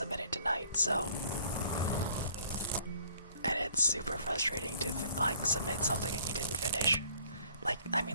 it tonight, so. And it's super frustrating to, submit something and you didn't finish.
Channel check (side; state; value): both; inverted; correlation -0.57